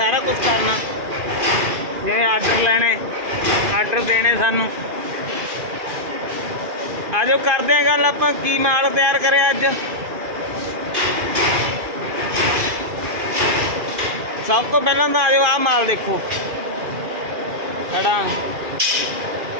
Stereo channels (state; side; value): late; left; 2.4 ms